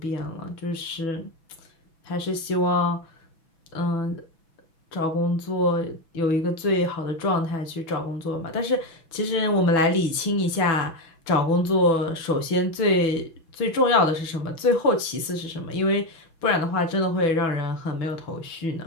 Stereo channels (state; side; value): late; right; 6.1 ms